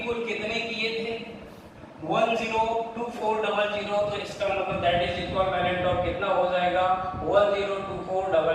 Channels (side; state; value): both; identical; correlation 1.00